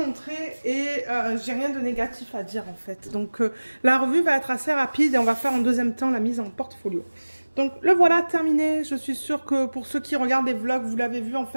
et j'ai rien de négatif à dire en fait. Donc la revue va être assez rapide et on va faire en deuxième temps la mise en portfolio. Donc le voilà terminé, je suis sûre que pour ceux qui regardent les vlogs, vous l'avez vu en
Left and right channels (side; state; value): both; inverted; correlation -1.00